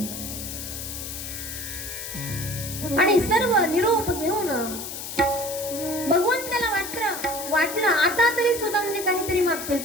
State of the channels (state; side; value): noise; left; hiss, 8 dB below the sound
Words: आणि सर्व निरोप घेऊन भगवंताला वाटलं आता तरी सुदामजी काहीतरी मागतील.